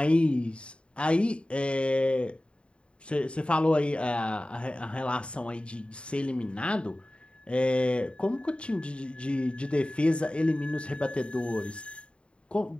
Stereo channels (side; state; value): right; late; 0.057 ms